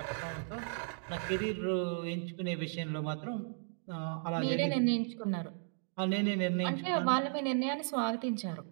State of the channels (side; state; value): left; silent; digital silence